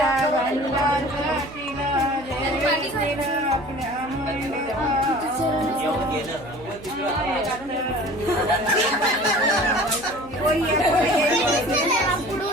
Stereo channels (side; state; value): right; noise; hum, 19 dB below the sound